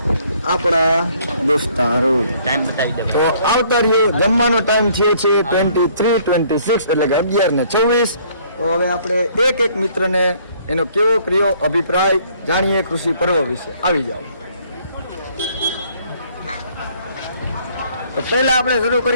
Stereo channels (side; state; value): both; inverted; correlation -0.62